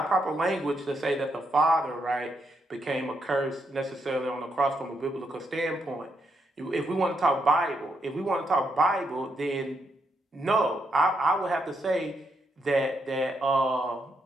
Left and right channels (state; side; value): normal; both; correlation 0.79